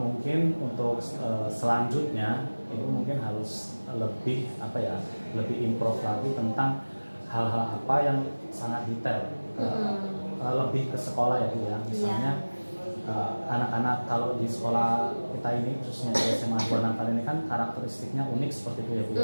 untuk selanjutnya Ibu mungkin harus lebih apa ya lebih improve lagi tentang hal-hal apa yang sangat detail, lebih ke sekolah ya Bu ya. Misalnya anak-anak kalau di sekolah kita ini khususnya di SMA 2 Natal ini kan karakteristiknya unik seperti itu ya Bu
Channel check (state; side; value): inverted; both; correlation -1.00